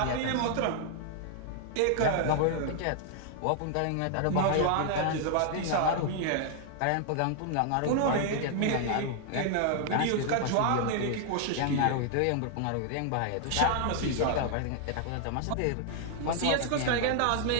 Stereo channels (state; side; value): different; both; correlation 0.00